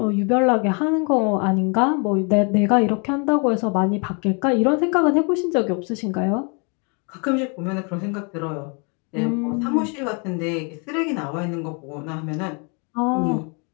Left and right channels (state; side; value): quieter; right; 35.2 dB